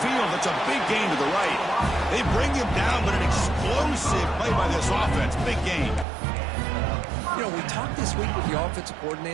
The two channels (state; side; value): drops out; left; at 6.1 s